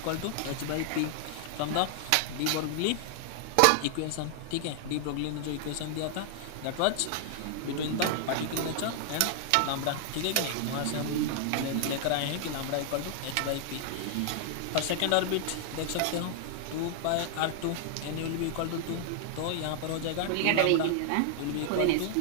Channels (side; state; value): both; different; correlation 0.00